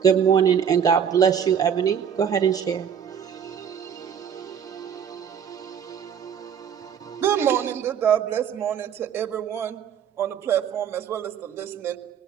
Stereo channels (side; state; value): left; quieter; 8.1 dB